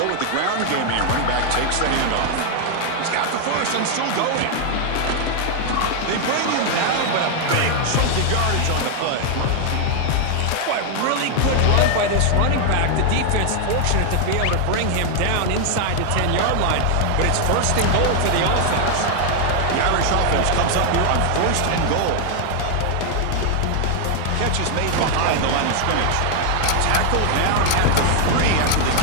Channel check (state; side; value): different; both; correlation 0.00